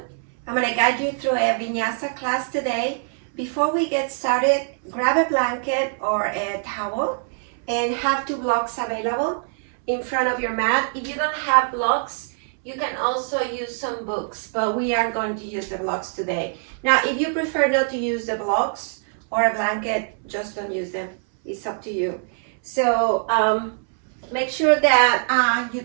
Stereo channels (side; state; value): left; silent; 63 dB below the other